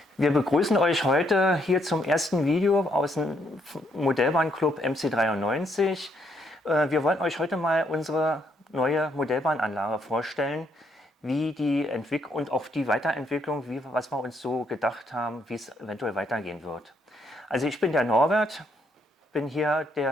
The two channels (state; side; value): normal; both; correlation 0.73